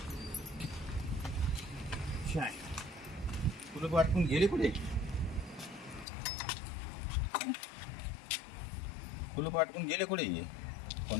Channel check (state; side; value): drops out; right; at 6.1 s